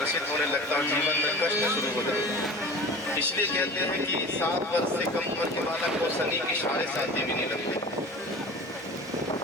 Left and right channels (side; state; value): both; normal; correlation 0.37